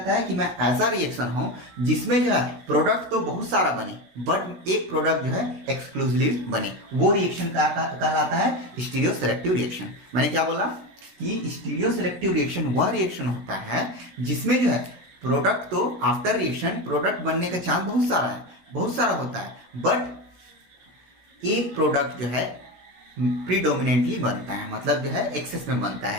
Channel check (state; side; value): late; left; 16 ms